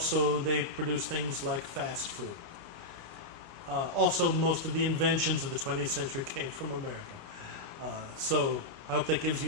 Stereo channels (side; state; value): left; late; 29 ms